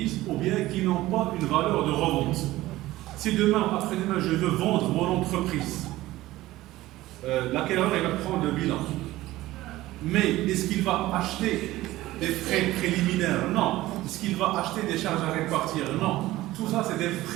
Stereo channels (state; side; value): quieter; left; 16.9 dB